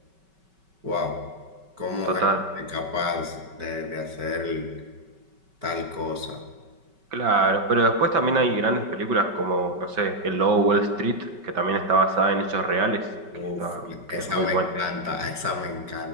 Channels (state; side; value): late; left; 5.3 ms